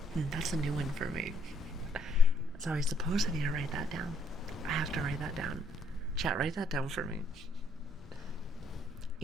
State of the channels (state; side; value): normal; both; correlation 0.67